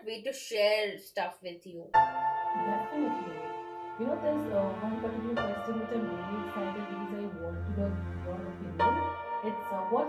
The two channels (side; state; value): both; identical; correlation 1.00